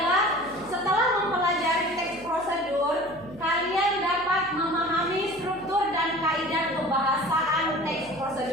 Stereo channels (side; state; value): left; noise; hum, 23 dB below the sound